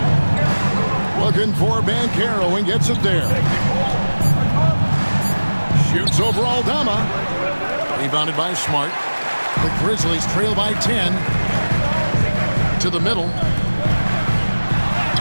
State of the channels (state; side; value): inverted; both; correlation -1.00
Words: Looking for Banchero and gets it there. Shoots over Aldama. Rebounded by Smart. The Grizzlies trail by 10. To the middle.